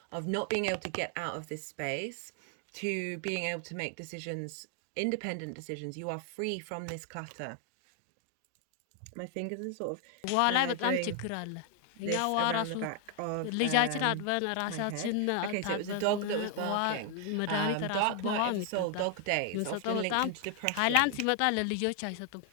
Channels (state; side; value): different; both; correlation 0.00